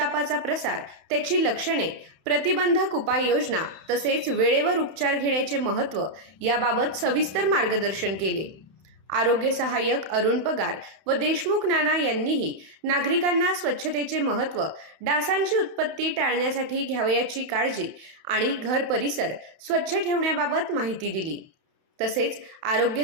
प्रसार, त्याची लक्षणे, प्रतिबंधक उपाययोजना तसेच वेळेवर उपचार घेण्याचे महत्त्व याबाबत सविस्तर मार्गदर्शन केले। आरोग्य सहाय्यक अरुण पगार व देशमुख नाना यांनीही नागरिकांना स्वच्छतेचे महत्त्व, डासांची उत्पत्ती टाळण्यासाठी घ्यावयाची काळजी आणि घर परिसर स्वच्छ ठेवण्याबाबत माहिती दिली। तसेच आरोग्य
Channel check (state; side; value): late; left; 31 ms